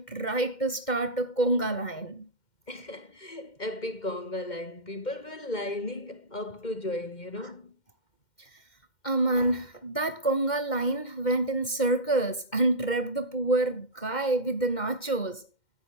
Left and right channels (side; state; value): right; late; 2.1 ms